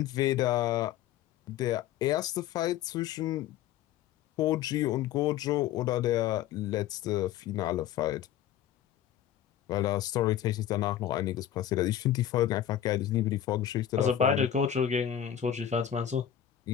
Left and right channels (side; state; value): right; quieter; 10.7 dB